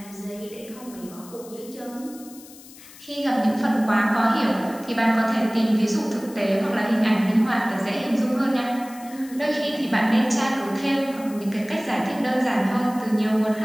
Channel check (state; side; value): noise; left; hiss, 20 dB below the sound